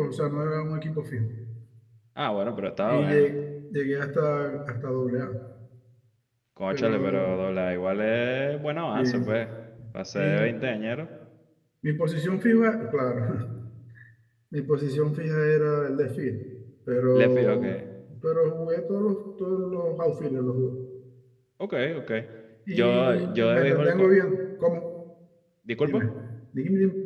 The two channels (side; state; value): both; identical; correlation 1.00